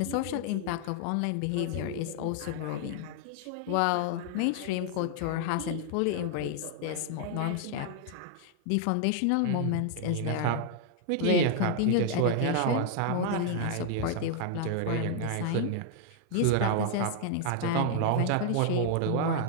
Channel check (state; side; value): different; both; correlation 0.00